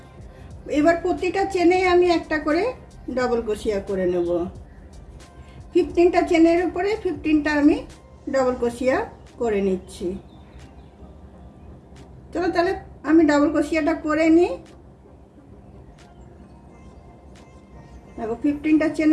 এবার প্রতিটা চেনে আমি একটা করে ডাবল ক্রোশিয়া করে নেব। 15টা চেনের উপরে 15টা আমি ডাবল ক্রোশিয়া করে নিচ্ছি। চলো তাহলে আমি ডাবল ক্রোশিয়াটা করে নিই। দেখো 15টা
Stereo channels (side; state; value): both; identical; correlation 1.00